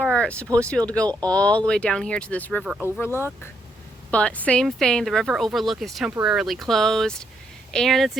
supposed to be able to go all the way down here to this river overlook. But same thing, the river overlook is temporarily closed, and it's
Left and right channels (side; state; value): both; normal; correlation 0.76